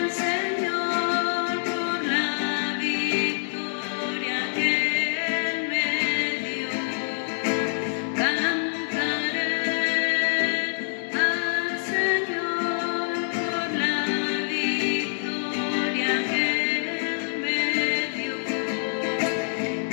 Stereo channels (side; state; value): right; silent; digital silence